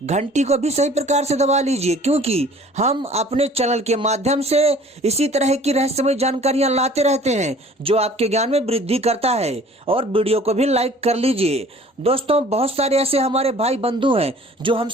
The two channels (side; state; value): both; normal; correlation 0.50